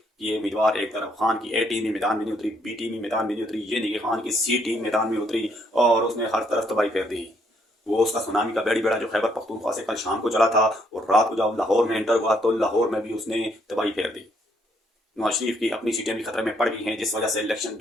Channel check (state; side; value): normal; both; correlation 0.70